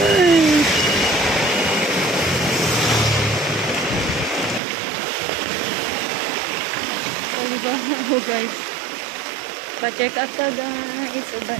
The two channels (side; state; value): left; drops out; at 4.6 s